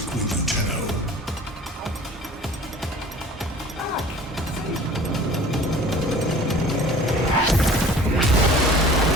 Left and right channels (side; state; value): both; normal; correlation 0.46